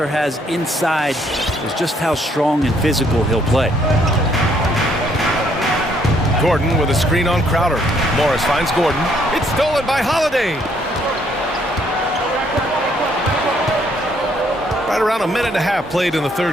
has inside is just how strong and physical he'll play. Gordon with a screen on Crowder. Morris finds Gordon. It's stolen by Holiday. Right around a minute and a half played in the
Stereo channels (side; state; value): both; normal; correlation 0.68